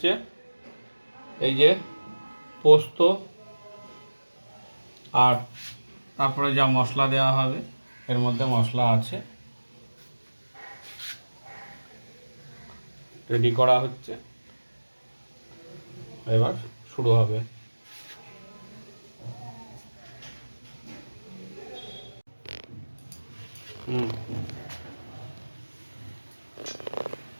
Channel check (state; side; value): inverted; both; correlation -1.00